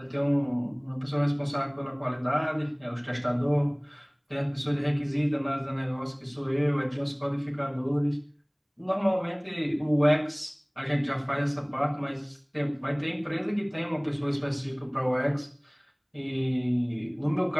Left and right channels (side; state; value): both; identical; correlation 1.00